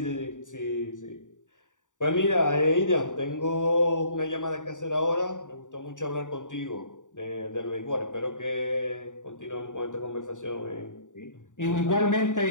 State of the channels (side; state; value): right; late; 0.86 ms